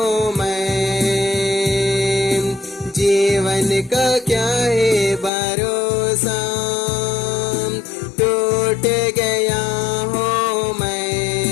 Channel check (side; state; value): right; drops out; at 5.3 s